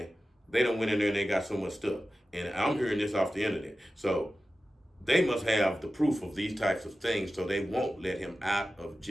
they don't went in there and they got so much stuff. And I'm hearing this off the internet. So they must have the proof of these types of things, so they won't let him out of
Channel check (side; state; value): both; normal; correlation 0.94